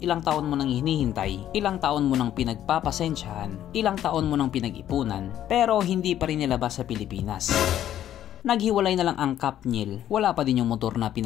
ilang taon mo nang hinihintay, ilang taon mo nang pinagpapasensyahan, ilang taon mo nang pinag-ipunan, pero hindi pa rin nilabas sa Pilipinas. Naghiwalay na lang ang kapnyel, wala pa din yung motor na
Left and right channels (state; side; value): quieter; right; 11.5 dB